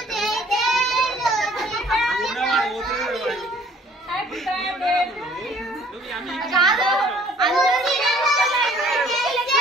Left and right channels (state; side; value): normal; both; correlation 0.57